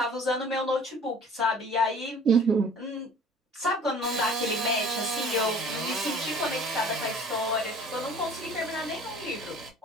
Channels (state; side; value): normal; both; correlation 0.48